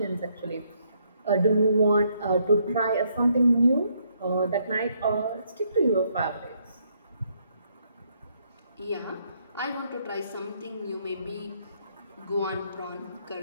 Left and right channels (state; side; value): inverted; both; correlation -0.72